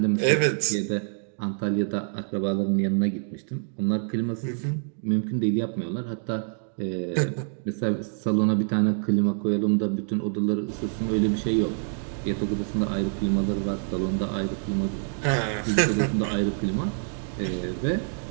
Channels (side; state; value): left; silent; 61 dB below the other